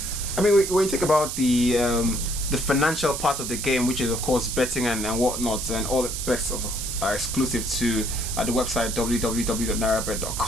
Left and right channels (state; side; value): noise; right; hiss, 5 dB below the sound